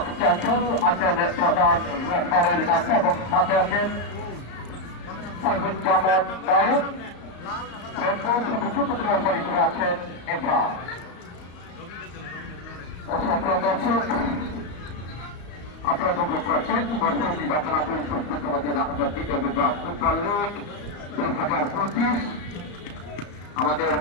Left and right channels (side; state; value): right; late; 34 ms